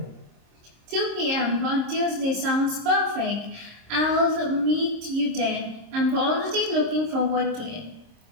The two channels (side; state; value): left; late; 26 ms